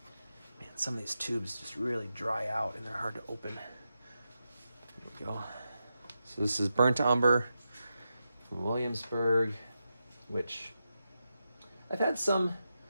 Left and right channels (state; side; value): inverted; both; correlation -0.88